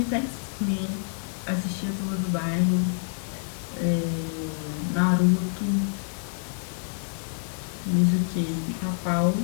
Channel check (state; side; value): silent; right; 60 dB below the other